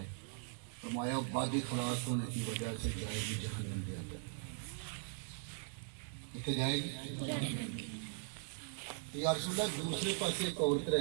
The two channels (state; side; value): silent; left; digital silence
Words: فرمایا بد اخلاق ہونے کی وجہ سے جائے گی جہنم کے اندر۔ کتنے جائے گی؟ یا رسول اللہ دوسرے پاسے ایک عورت